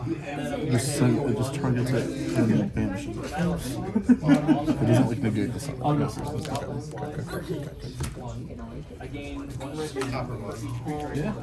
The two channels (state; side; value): identical; both; correlation 1.00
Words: it just targets it and banishes it. It doesn't like negate the sun. Okay. Yeah.